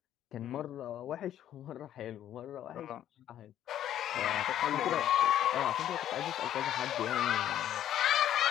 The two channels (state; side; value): quieter; right; 11.3 dB